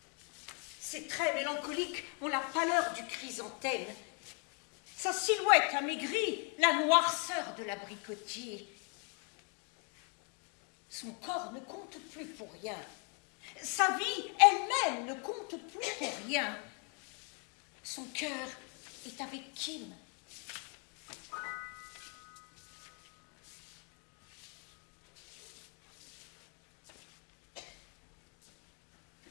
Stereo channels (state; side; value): quieter; right; 37.5 dB